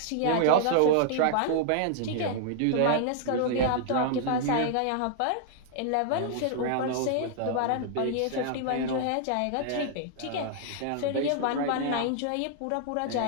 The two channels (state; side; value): different; both; correlation -0.01